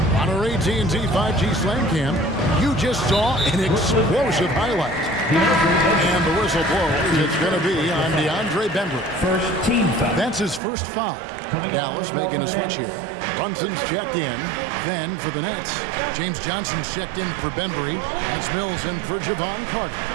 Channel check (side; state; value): left; drops out; at 10.6 s